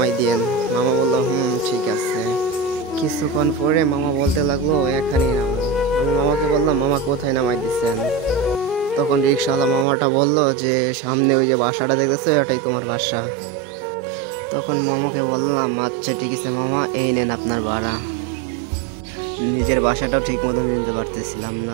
দিয়েন। মামা বলল, ঠিক আছে। কিছুক্ষণ পরে মামা বলতে লাগলো, এখানেই নামো। আমি মামাকে বললাম, মামা কোথায় নামাই দিচ্ছেন? তখন রিক্সাওয়ালা মামাটা বলল যে সামনে ওই যে বাসাটা দেখতেছো, ওটাই তোমার বাসা। তখন মামাকে বললাম, আচ্ছা ঠিক আছে মামা, এই নেন আপনার ভাড়া। নিজের বাসাটাও ঠিক মতো নিতে পারতেছিলাম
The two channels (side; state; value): left; drops out; at 9.9 s